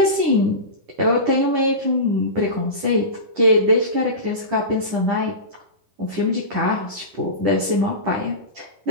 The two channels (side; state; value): left; late; 9.9 ms